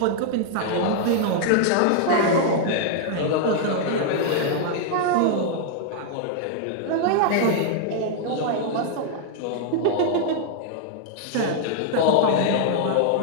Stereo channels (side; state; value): both; different; correlation 0.00